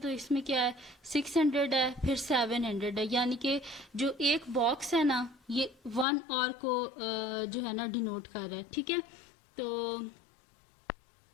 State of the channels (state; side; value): drops out; right; at 6.1 s